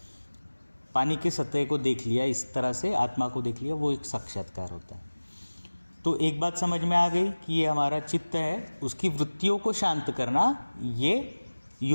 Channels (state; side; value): inverted; both; correlation -1.00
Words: पानी की सतह को देख लिया, इस तरह से आत्मा को देख लिया, वो एक साक्षात्कार होता है। तो एक बात समझ में आ गई कि ये हमारा चित्त है, उसकी वृत्तियों को शांत करना ये